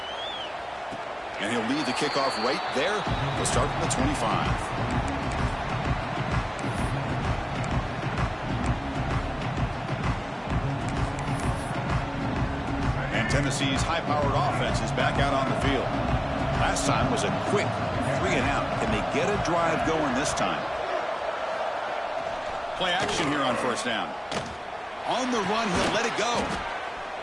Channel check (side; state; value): both; identical; correlation 1.00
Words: And he'll lead the kickoff right there. He'll start from the 25. And Tennessee's high-powered offense is back out on the field. Last time was a quick 3 and out. Can they get a drive going this time? Play action here on 1st down. On the run, he'll let it go.